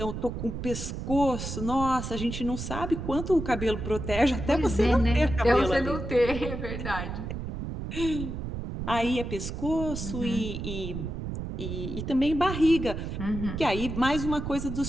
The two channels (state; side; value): noise; right; rumble, 5 dB below the sound